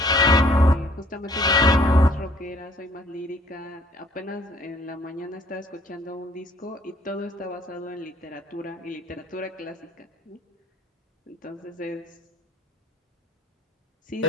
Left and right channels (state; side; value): normal; both; correlation 0.59